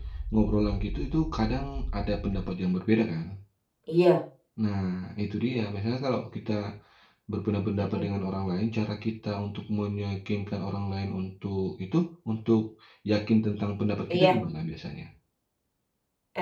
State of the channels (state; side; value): identical; both; correlation 1.00